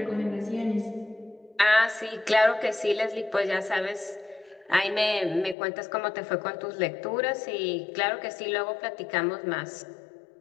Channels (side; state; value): right; drops out; at 5.6 s